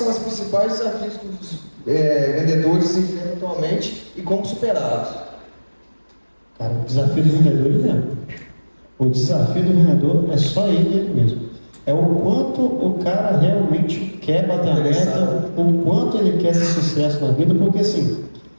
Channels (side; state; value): both; inverted; correlation -1.00